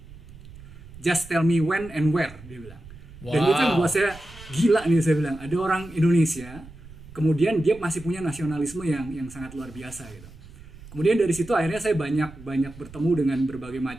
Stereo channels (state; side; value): noise; right; rumble, 18 dB below the sound